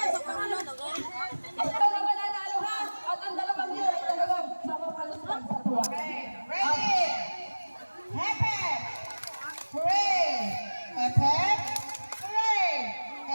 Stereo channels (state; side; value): inverted; both; correlation -1.00